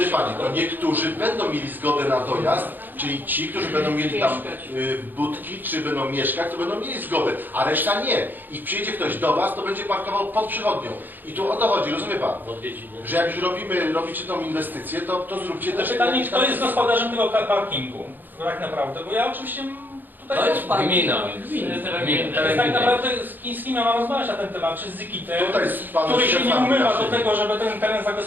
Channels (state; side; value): late; left; 0.089 ms